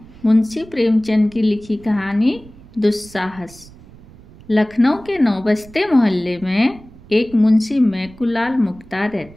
मुंशी प्रेमचंद की लिखी कहानी दुस्साहस। लखनऊ के नौबस्ते मोहल्ले में एक मुंशी मैकुलाल मुख्तार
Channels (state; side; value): noise; right; rumble, 22 dB below the sound